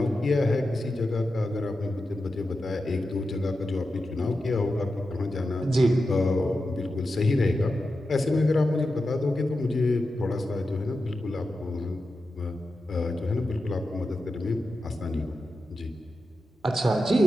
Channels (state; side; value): normal; both; correlation 0.90